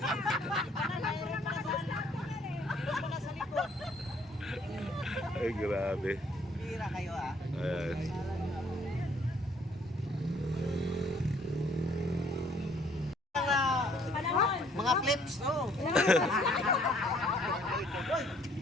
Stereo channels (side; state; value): both; normal; correlation 0.62